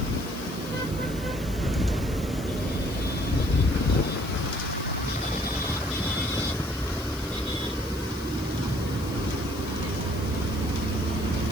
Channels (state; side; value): noise; left; hiss, 17 dB below the sound